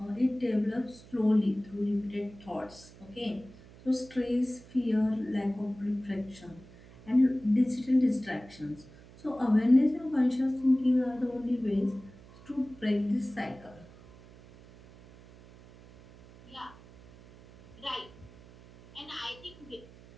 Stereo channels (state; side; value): noise; right; hum, 21 dB below the sound